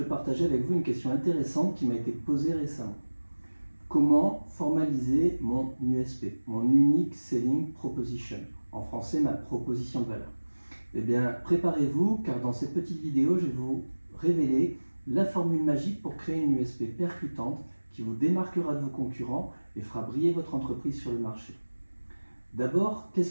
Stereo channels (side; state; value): both; inverted; correlation -1.00